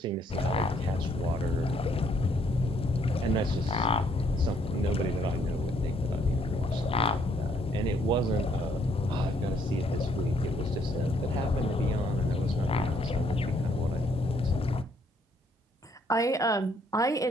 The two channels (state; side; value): normal; both; correlation 0.68